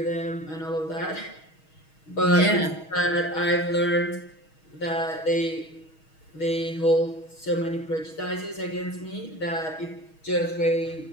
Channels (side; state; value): right; late; 6.3 ms